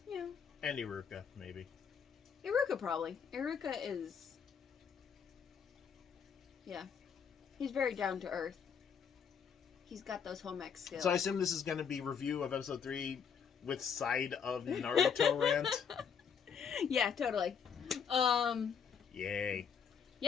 Yeah. And Iruka, maybe. Iruka probably. Iruka is... Yeah. He's very down to earth. He's got those home ec skills. So I assume this is going to be review of episode 3 with side of Naruto rant? Yeah, totally. Yay.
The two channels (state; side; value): quieter; right; 7.0 dB